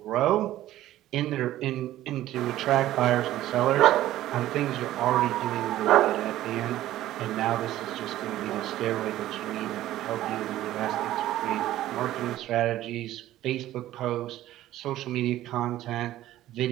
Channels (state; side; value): quieter; left; 14.2 dB